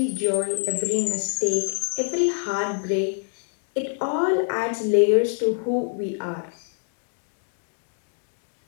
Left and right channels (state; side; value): silent; right; digital silence